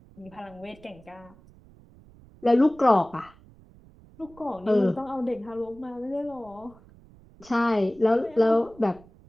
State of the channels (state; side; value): noise; right; rumble, 25 dB below the sound